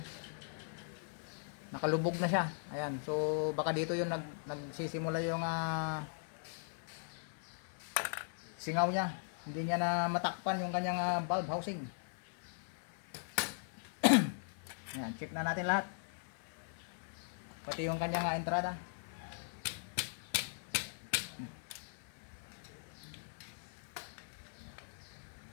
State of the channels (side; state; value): right; silent; 51 dB below the other